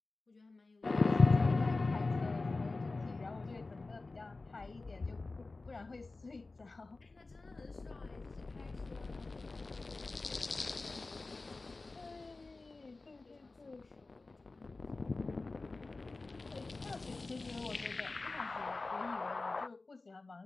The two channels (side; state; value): right; quieter; 3.5 dB